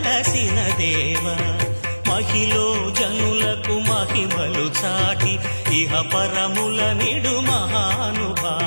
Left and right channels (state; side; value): inverted; both; correlation -1.00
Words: దేవ మహిలో జనులకు మహిమలు చాటి ఇహ పరముల నిడు